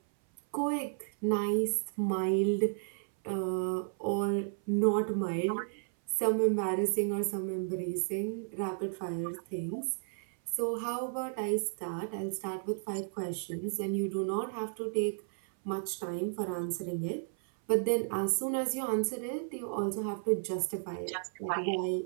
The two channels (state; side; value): silent; left; 56 dB below the other